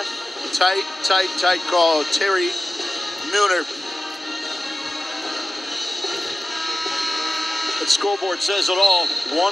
Tight call. Terry Nooner. The scoreboard says it all.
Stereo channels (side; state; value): both; normal; correlation 0.95